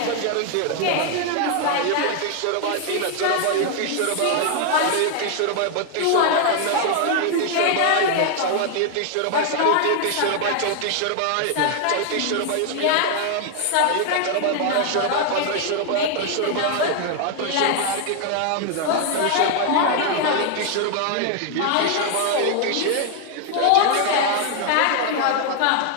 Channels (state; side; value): different; both; correlation 0.00